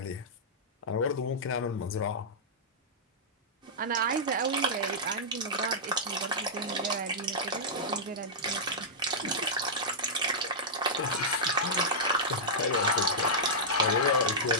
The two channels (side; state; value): both; normal; correlation -0.10